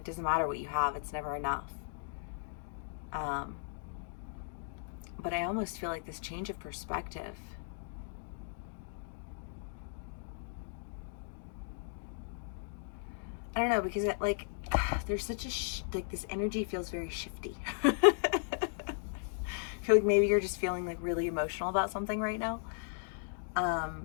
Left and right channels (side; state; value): right; silent; digital silence